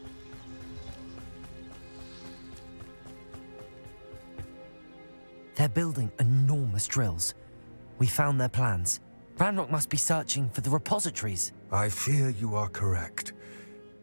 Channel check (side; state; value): both; inverted; correlation -1.00